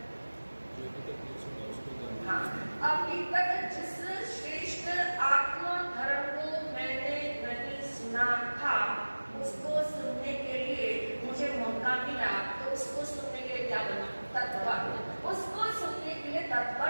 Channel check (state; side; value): inverted; both; correlation -1.00